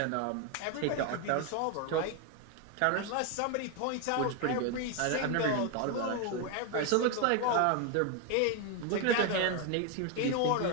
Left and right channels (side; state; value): both; different; correlation 0.01